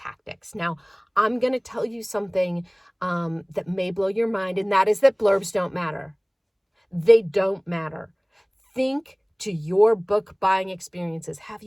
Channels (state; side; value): identical; both; correlation 1.00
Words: Now, I'm going to tell you something that may blow your mind, and that is that blurbs don't matter. They don't matter. Think to your book buying experiences. Have